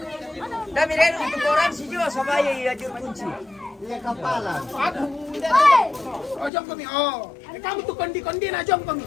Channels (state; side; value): drops out; right; at 6.5 s